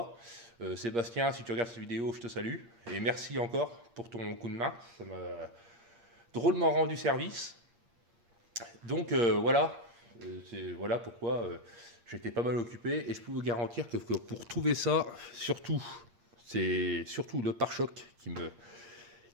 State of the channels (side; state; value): left; late; 8.6 ms